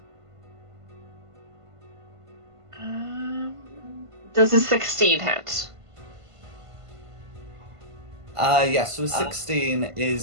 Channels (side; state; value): left; late; 1.5 ms